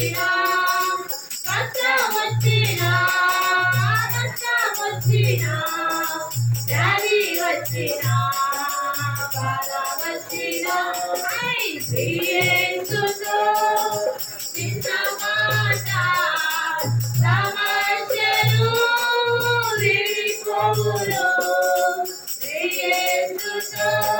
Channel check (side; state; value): both; identical; correlation 1.00